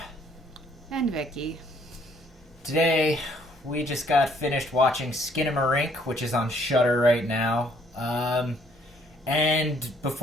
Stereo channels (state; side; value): normal; both; correlation 0.64